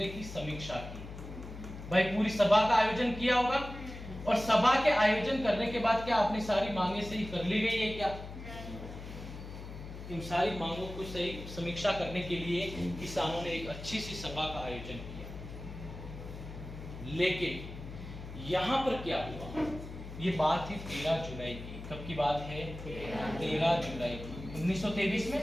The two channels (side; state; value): left; noise; hum, 11 dB below the sound